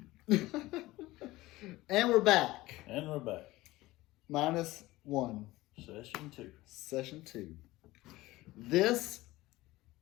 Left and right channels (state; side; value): quieter; right; 18.5 dB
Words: And we're back. And we're back. -1. Session 2. Session 2. This,